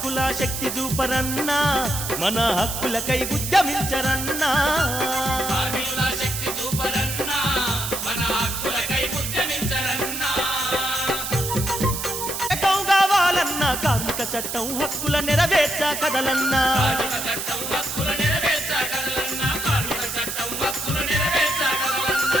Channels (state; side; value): noise; right; hiss, 4 dB below the sound